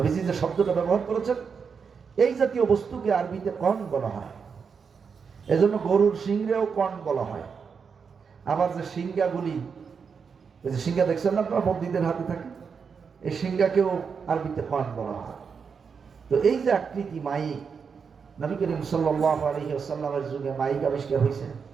যে শব্দটা ব্যবহার করেছেন, এই জাতীয় বস্তুকে আরবিতে কর্ন বলা হয়। এজন্য গরুর সিংহেও কর্ন বলা হয়। আবার যে সিংহাগুলি, এই যে সিংহা দেখছেন না আপনারা, বন্দীদের হাতে থাকে, এই সিংহাকেও আরবিতে কর্ন বলা হয়। তো এই যে আকৃতি মাইক, নবী করিম সাল্লাল্লাহু আলাইহি ওয়াসাল্লামের যুগে মাইক আবিষ্কার হয়েছে?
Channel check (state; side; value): quieter; left; 6.0 dB